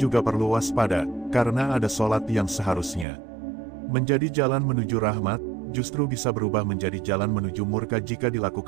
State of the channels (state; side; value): drops out; left; at 3.1 s